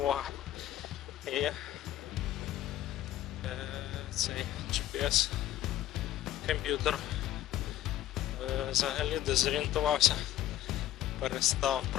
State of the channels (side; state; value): right; quieter; 13.2 dB